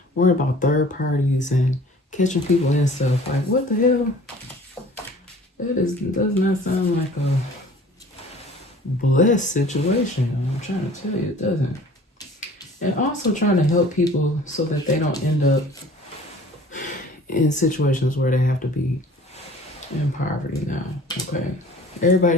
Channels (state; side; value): normal; both; correlation 0.48